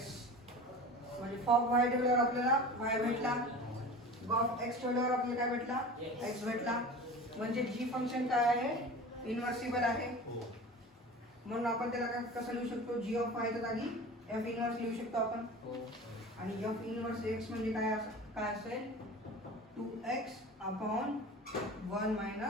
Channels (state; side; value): normal; both; correlation 0.36